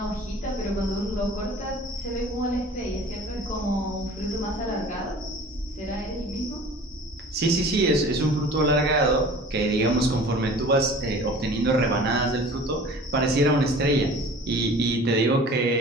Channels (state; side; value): normal; both; correlation 0.44